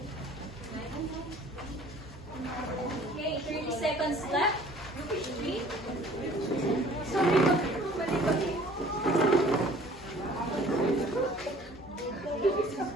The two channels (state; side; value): normal; both; correlation 0.52